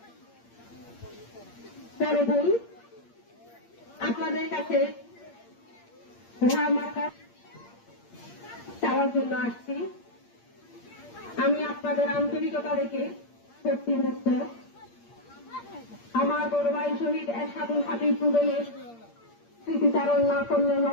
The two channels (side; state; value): right; late; 8.6 ms